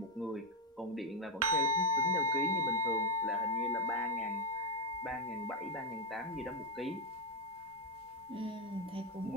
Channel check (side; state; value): both; normal; correlation 0.05